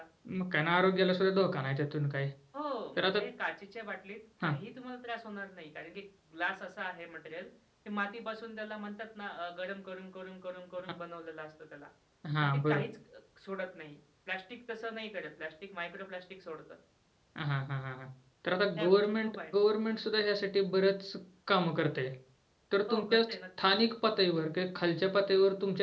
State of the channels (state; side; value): identical; both; correlation 1.00